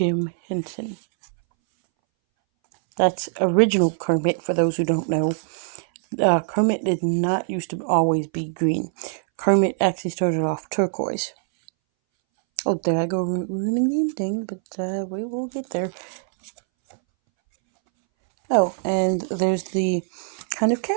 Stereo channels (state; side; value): silent; left; 62 dB below the other